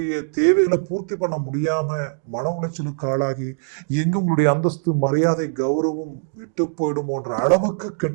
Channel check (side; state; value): left; silent; digital silence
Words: தேவைகளை பூர்த்தி பண்ண முடியாம மன உளைச்சலுக்கு ஆளாகி எங்க உங்களுடைய அந்தஸ்து மரியாதை கௌரவம் விட்டு போயிடுமோன்ற அளவுக்கு